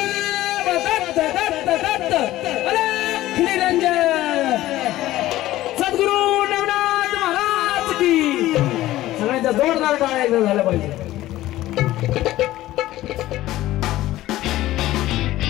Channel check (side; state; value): right; quieter; 15.5 dB